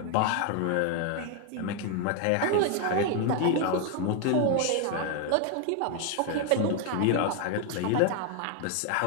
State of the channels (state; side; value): different; both; correlation 0.01